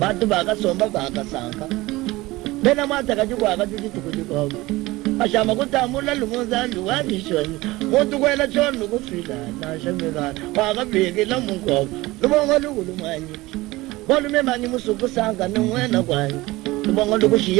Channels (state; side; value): quieter; left; 19.9 dB